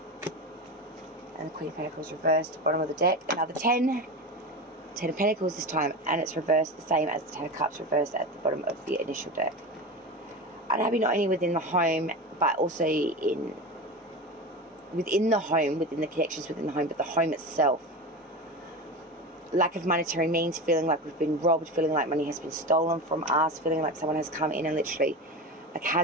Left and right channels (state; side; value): normal; both; correlation 0.25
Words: And the Queen of Pentacles reversed, bottom of the deck. Another 10. 10 of Pentacles this time, and it's reversed the same as the 10 of Cups reversed at the bottom of the initial deck. Unhappy not only within the home, but also within the home, within the connections within the home, but the home itself. Lack of monetary means, feeling like we've been robbed, feeling like money has been stolen from us, feeling like someone has come in and literally like